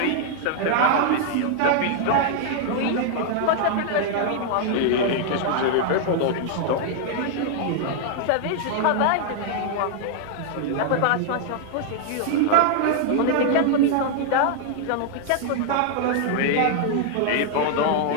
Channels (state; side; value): different; both; correlation 0.00